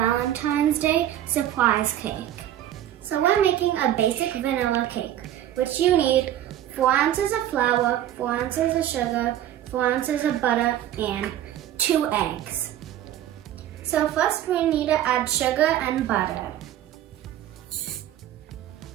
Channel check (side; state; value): left; quieter; 12.0 dB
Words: Day surprise cake. So we're making a basic vanilla cake, which you need 4 ounces of flour, 4 ounces of sugar, 4 ounces of butter, and 2 eggs. So first we need to add sugar and butter.